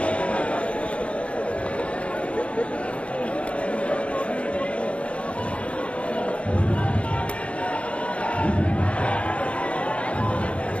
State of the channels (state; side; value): late; right; 0.061 ms